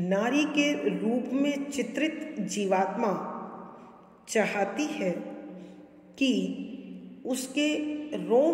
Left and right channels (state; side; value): identical; both; correlation 1.00